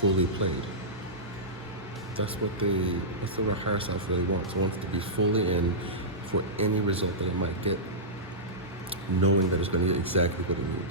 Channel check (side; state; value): both; normal; correlation -0.15